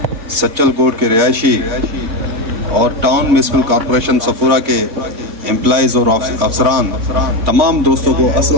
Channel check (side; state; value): left; late; 3.5 ms